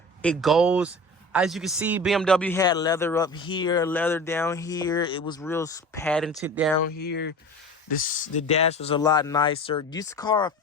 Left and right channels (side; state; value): both; normal; correlation 0.35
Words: it goes, as you can see, BMW had leather up here, leather down here. It was real patented down here. The dash was a lot nicer. This car